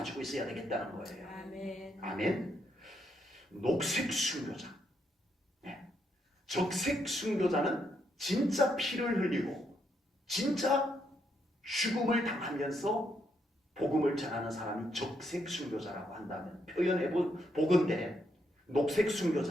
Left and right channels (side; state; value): both; normal; correlation 0.77